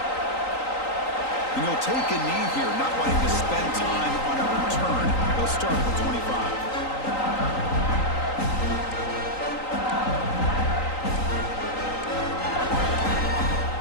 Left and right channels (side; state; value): right; late; 3.9 ms